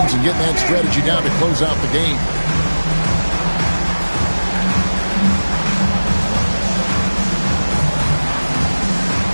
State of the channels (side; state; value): both; inverted; correlation -1.00